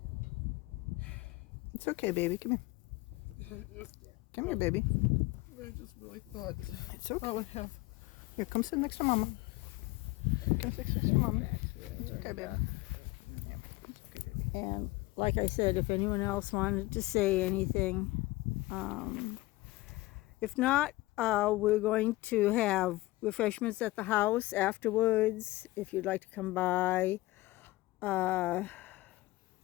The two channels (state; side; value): quieter; right; 19.7 dB